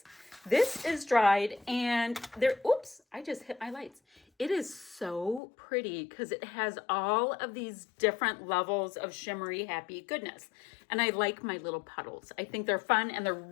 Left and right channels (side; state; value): right; drops out; at 5.4 s